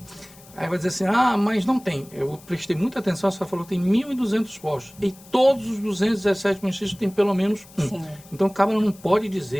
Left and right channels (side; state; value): left; noise; hiss, 23 dB below the sound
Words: Aí vai dizer assim, mas não tem. Eu prestei muita atenção, você falou que tem 1.200 postos. E todos os 217 municípios têm pelo menos um. Sim. Então, o cabra não pode